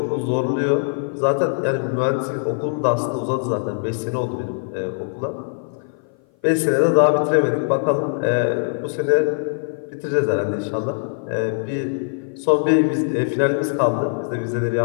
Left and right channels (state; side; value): silent; right; 56 dB below the other